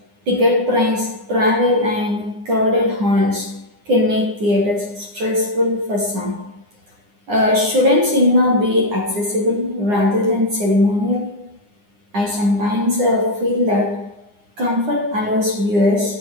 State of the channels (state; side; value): late; left; 9.8 ms